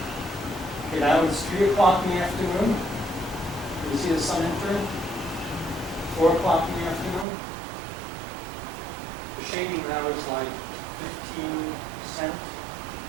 Okay, now it's 3 o'clock in the afternoon. Can you see the sun entering? 4 o'clock in the afternoon. The shading now is like 15%.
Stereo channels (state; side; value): drops out; left; at 7.2 s